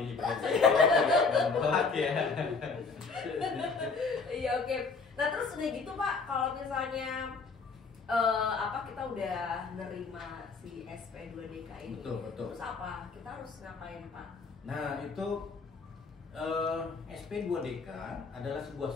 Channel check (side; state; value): right; quieter; 4.5 dB